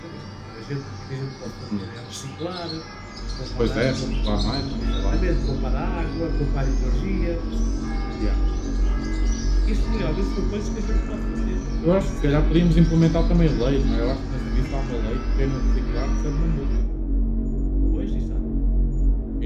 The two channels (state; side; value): identical; both; correlation 1.00